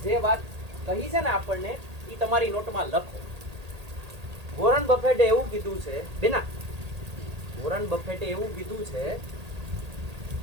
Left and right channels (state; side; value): late; left; 1.8 ms